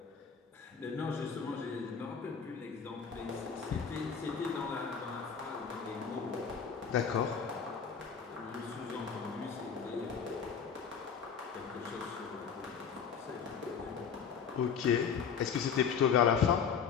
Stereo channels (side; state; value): right; quieter; 6.6 dB